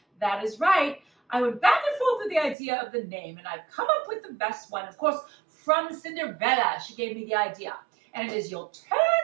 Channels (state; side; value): drops out; left; at 2.6 s